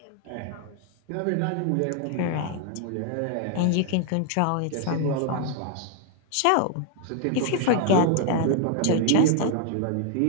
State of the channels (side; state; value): both; different; correlation 0.00